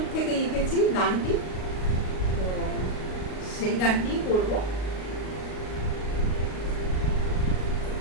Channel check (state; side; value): late; right; 38 ms